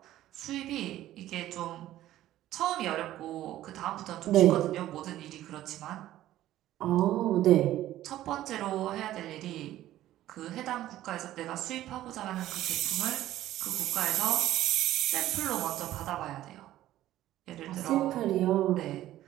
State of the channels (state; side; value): quieter; left; 13.9 dB